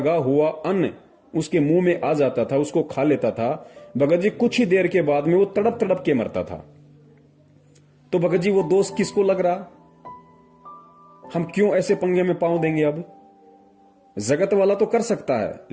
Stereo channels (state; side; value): identical; both; correlation 1.00